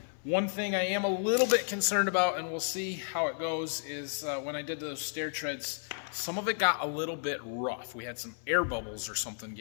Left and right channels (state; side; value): silent; right; 56 dB below the other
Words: One thing I am a little bit concerned about, and we'll see how it goes, is when I did those stair treads, some of it got a little bit rough. We had some air bubbles or something